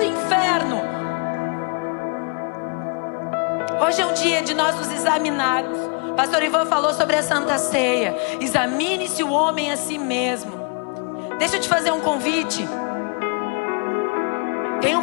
inferno. Hoje é um dia de nós nos examinarmos. Pastor Ivan falou sobre a Santa Ceia. Examine-se o homem a si mesmo. Deixa eu te fazer um convite. Tenha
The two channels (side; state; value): right; quieter; 35.8 dB